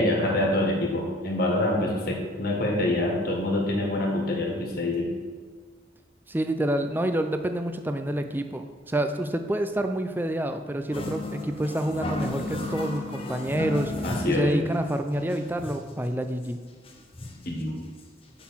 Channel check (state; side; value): normal; both; correlation 0.63